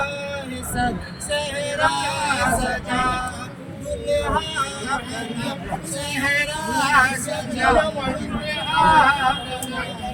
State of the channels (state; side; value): identical; both; correlation 1.00